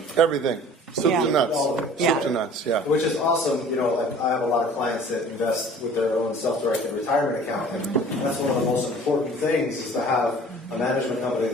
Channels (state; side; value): normal; both; correlation 0.47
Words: Everything. Soup to nuts. All of it. Soup to nuts, yeah. Which is awesome. Like I have a lot of clients that invest with their own self-directed retirement account, and that's one of the most important things is to have a management company